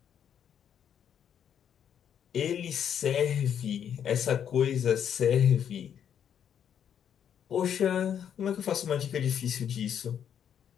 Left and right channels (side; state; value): right; quieter; 8.8 dB